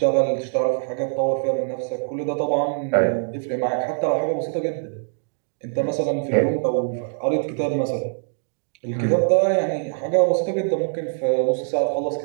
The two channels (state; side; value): silent; left; digital silence